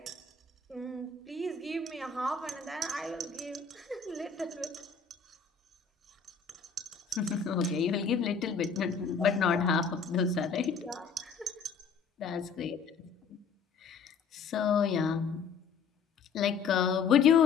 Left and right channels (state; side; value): quieter; right; 5.7 dB